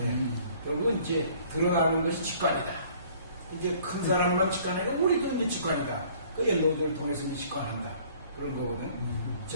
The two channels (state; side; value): inverted; both; correlation -0.55